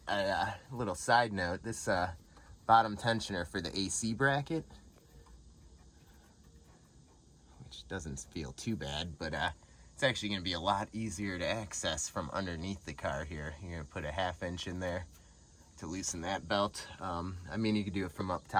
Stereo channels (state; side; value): identical; both; correlation 1.00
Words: a little side note, this bottom tensioner for the AC bracket, which doesn't feel too bad, but it's actually gonna be a lot easier to access from underneath the car here. You're gonna put a 1/2 inch in there to loosen that belt. I mean, you could do it from up